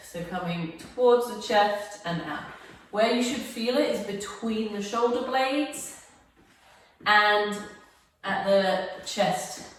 So coming towards the chest and out. Where you should feel it is between the shoulder blades and at the chest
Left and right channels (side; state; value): both; identical; correlation 1.00